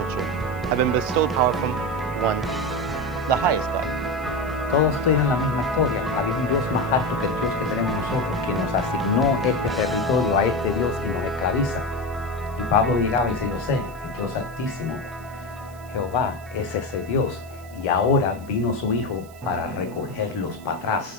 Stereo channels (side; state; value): right; noise; hiss, 24 dB below the sound